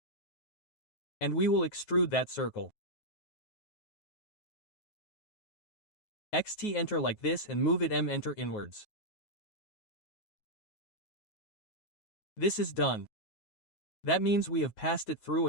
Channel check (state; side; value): late; right; 9.4 ms